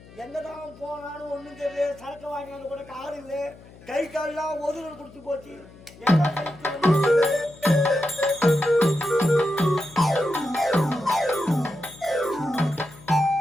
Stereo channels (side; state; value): left; noise; hum, 22 dB below the sound